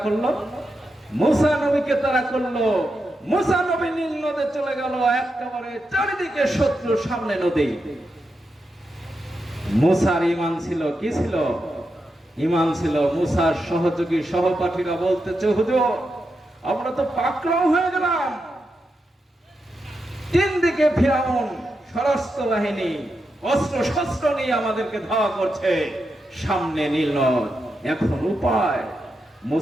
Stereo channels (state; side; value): normal; both; correlation 0.87